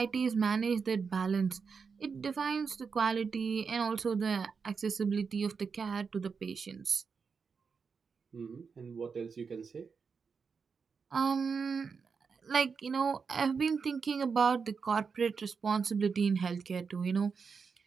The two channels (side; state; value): left; quieter; 5.5 dB